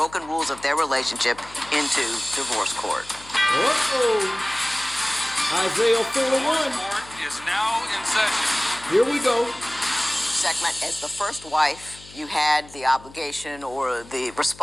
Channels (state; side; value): noise; left; hum, 21 dB below the sound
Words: rules of their relationship into divorce court. Isaiah 4:1 is now in session. Here we go. Segment, as the first wife, you had the obligation or the